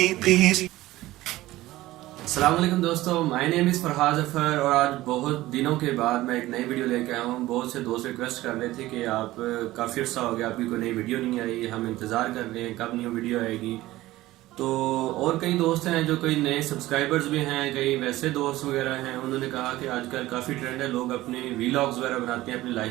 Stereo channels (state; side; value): quieter; left; 17.0 dB